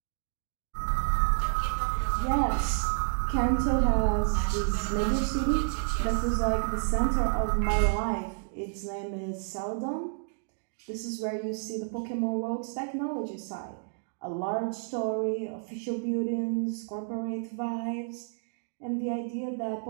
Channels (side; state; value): left; silent; digital silence